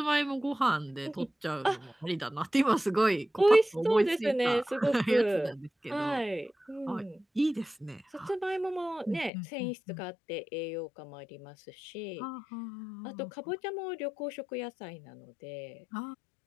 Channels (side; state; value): right; drops out; at 9.3 s